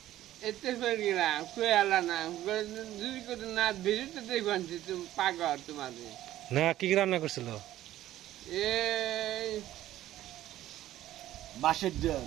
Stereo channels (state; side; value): quieter; left; 13.8 dB